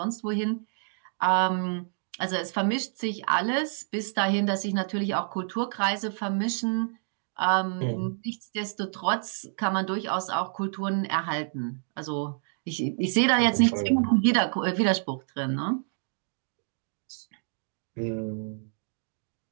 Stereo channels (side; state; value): left; silent; digital silence